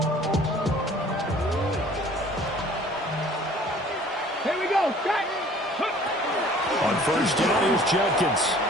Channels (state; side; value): normal; both; correlation 0.52